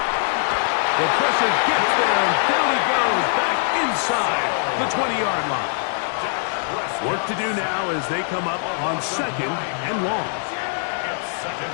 The pressure gets there, and down he goes back inside the 20-yard line. Work to do now as they come up on 2nd and long. It's 2nd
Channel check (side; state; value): right; silent; digital silence